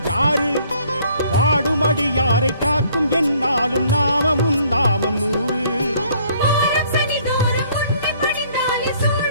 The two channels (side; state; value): both; inverted; correlation -0.61